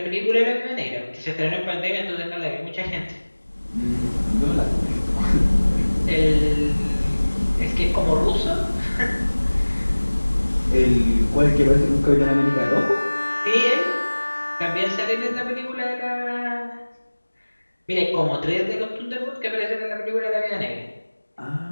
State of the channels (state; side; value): inverted; both; correlation -1.00